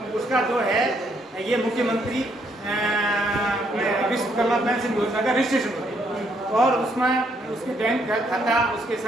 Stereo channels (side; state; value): both; normal; correlation 0.71